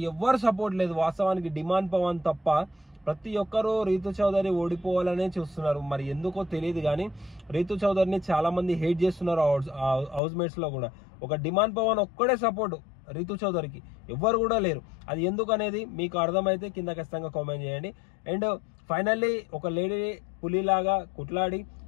ఎవ్వరు సపోర్ట్ లేదు వాస్తవానికి, డిమాండ్ పవన్ తప్ప. ప్రతి ఒక్కరూ రీతు చౌదరి ఓడిపోవాలనే చూస్తున్నారు, మరి ఎందుకో తెలియదు కానీ రీతు చౌదరిని చాలా మంది హేట్ చేస్తున్నారు హౌస్ మేట్స్ లో కూడా. ఒక డిమాండ్ పవన్ ఒక్కడే సపోర్ట్ రీతు చౌదరికి, ఎవ్వరు కూడా లేరు. అది ఎందుకు అనేది మీకు అర్థమైతే కింద ఖచ్చితంగా కామెంట్ చేయండి. అండ్ ఫైనల్లీ ఒక లేడీ పులిలాగా కుట్లాడి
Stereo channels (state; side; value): drops out; right; at 10.2 s